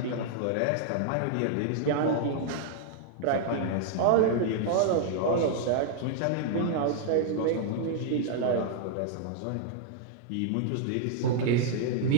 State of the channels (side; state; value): both; different; correlation -0.01